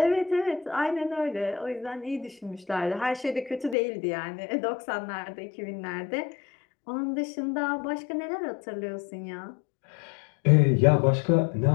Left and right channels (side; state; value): right; drops out; at 3.8 s